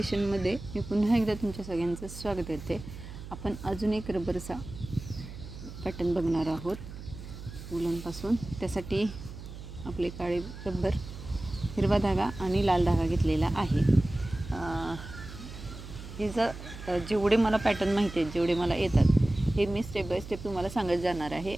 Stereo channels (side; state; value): right; noise; hum, 12 dB below the sound